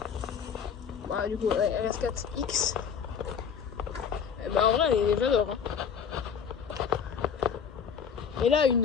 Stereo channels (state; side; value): quieter; right; 7.1 dB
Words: Bah, du coup, ouais, RS4X. Et bah, en vrai, j'adore. Hein. Et là,